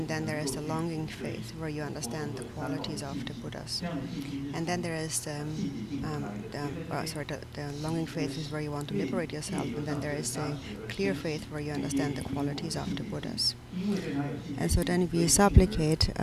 then there is the longing faith, where you understand the qualities of the Buddhas. And then there is the longing faith is where you want to liberate yourself, and then there is the clear faith, where you understand the qualities of the Buddhas. And so then we supplicate,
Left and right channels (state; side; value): identical; both; correlation 1.00